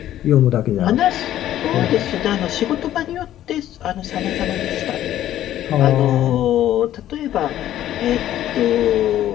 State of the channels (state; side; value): quieter; right; 12.5 dB